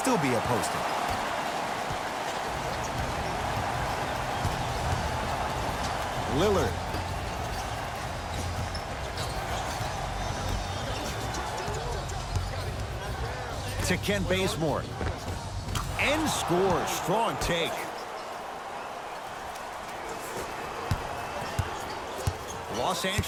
be a poster. Lillard. to Ken Bazemore. And scores. Strong take. Los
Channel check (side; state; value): both; identical; correlation 1.00